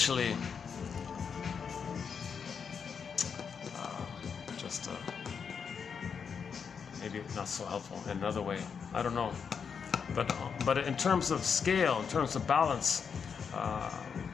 maybe not so helpful in another way. I don't know, but in terms of scale, in terms of balance,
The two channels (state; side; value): quieter; right; 6.5 dB